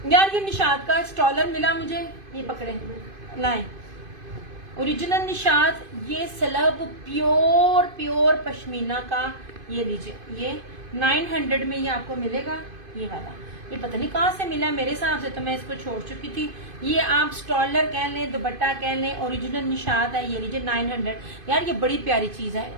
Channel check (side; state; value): left; late; 2.5 ms